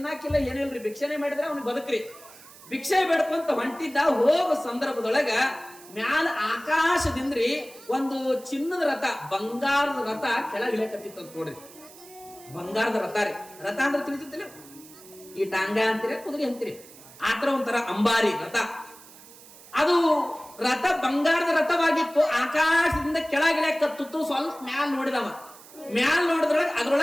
ಏನಿಲ್ರಿ, ಭಿಕ್ಷೆನೆ ಮಾಡಿದ್ರೆ ಅವ್ನಿಗೆ ಬದುಕ್ರಿ. ಭಿಕ್ಷೆ ಬೇಡ್ಕೊಂತ ಹೊಂಟಿದ್ದ. ಹೋಗೋ ಸಂದರ್ಭದೊಳಗ ಮ್ಯಾಲ ಆಕಾಶದಿಂದ್ರಿ ಒಂದು ಚಿನ್ನದ ರಥ, ಬಂಗಾರದ ರಥ ಕೆಳಗಿಳಕತ್ತಿತ್ತು ಅಂತ ನೋಡ್ರಿ. ಬಂಗಾರದ ರಥ ರೀ. ರಥ ಅಂದ್ರೆ ತಿಳಿತಿಲ್ಲ, ಈ ಟಾಂಗ ಅಂತೀರಿ, ಕುದುರೆ ಅಂತೀರಿ, ಆತರ ಒಂಥರ ಅಂಬಾರಿ ರಥ. ಅದು ರಥ ಬಂಗಾರದ ರಥವಾಗಿತ್ತು. ಆಕಾಶದಿಂದ ಕೆಳಗಿಳಕತ್ತಿತ್ತು. ಸ್ವಲ್ಪ ಮ್ಯಾಲ ನೋಡಿದವ. ಮ್ಯಾಲ ನೋಡಿದ್ರೊಳಗೆ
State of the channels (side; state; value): right; noise; hiss, 20 dB below the sound